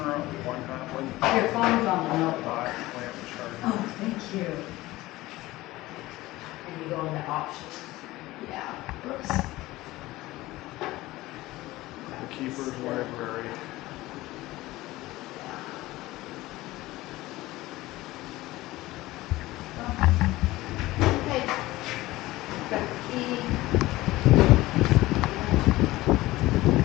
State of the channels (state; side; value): quieter; right; 18.2 dB